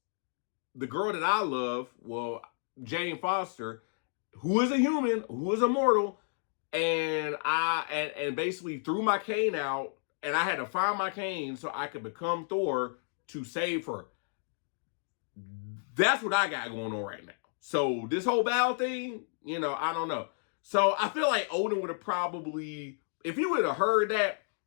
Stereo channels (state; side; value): silent; right; digital silence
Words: the girl that I love, Jane Foster, who is a human, who is a mortal, and I basically threw my cane out, and I had to find my cane so I could become Thor to save her. That's what I got going on right now. So this whole battle thing, I don't know. So I feel like Odin would have probably, if he would have heard that,